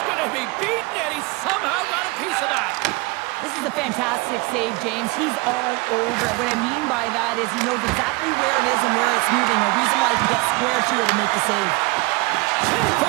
going to be beaten, and he somehow got a piece of that. This is a fantastic save, James. He's all over it. What I mean by that is he knows exactly where it is and where it's moving. A reason why he can get square to it and make the save. Can't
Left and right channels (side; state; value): left; quieter; 24.7 dB